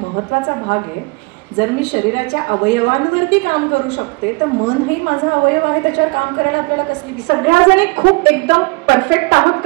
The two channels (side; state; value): left; quieter; 28.4 dB